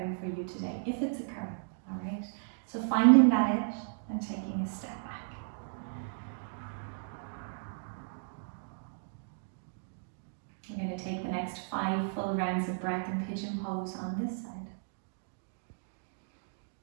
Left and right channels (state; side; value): silent; left; digital silence